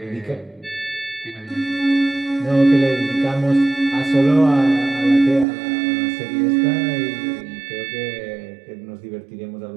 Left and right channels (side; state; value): left; drops out; at 5.5 s